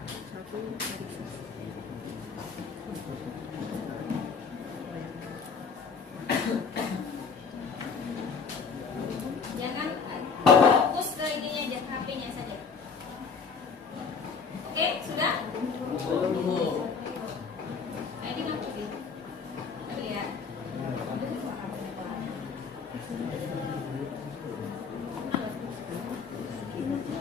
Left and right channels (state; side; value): quieter; right; 5.5 dB